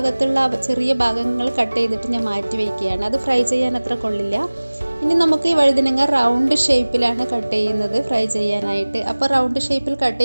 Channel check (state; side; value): inverted; both; correlation -1.00